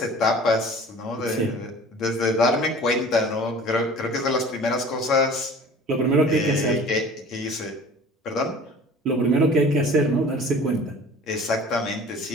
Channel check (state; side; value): normal; both; correlation 0.44